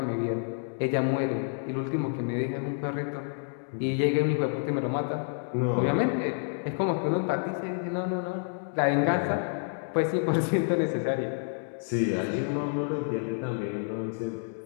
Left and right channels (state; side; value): silent; right; digital silence